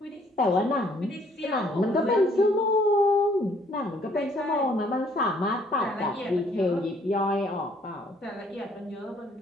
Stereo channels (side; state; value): both; normal; correlation 0.63